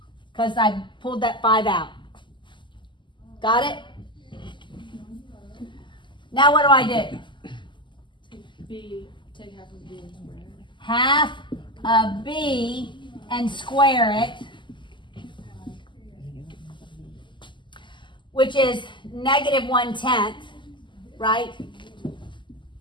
because I pulled that 5 out. Got it? Now what do I do? Take half of B and square it. Half of b and square it, which is negative 1/10, right?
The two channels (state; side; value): late; right; 0.23 ms